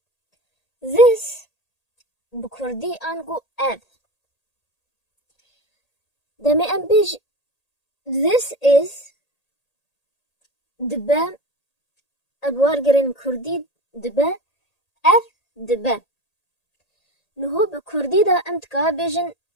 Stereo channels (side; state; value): right; late; 1.8 ms